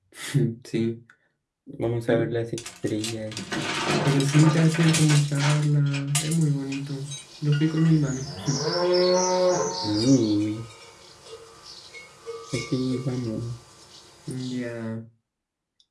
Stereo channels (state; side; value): identical; both; correlation 1.00